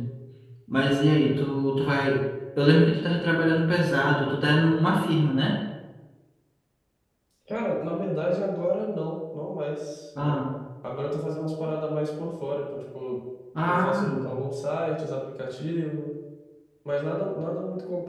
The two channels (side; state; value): both; identical; correlation 1.00